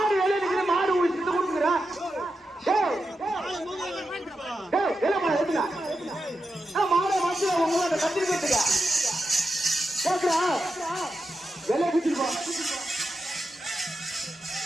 வெளியே நிக்கிற மாடு உடிச்சு கொடுக்குற மாட வந்து உங்களோட கத்திரிக்கா கேக்குறா வெளியே குடிச்சிருப்போம்.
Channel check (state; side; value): normal; both; correlation 0.89